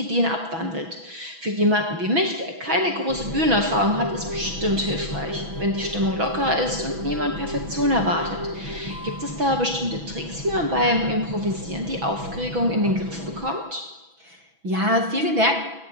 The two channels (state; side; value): late; left; 6.1 ms